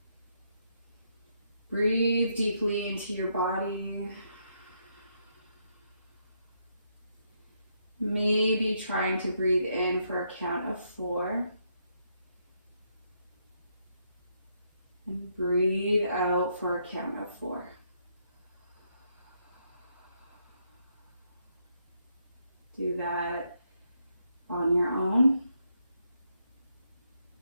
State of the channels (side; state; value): both; inverted; correlation -0.77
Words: Breathe deeply into your body. Maybe trying to breathe in for a count of 4. And breathe out for a count of 4. Do that on your own.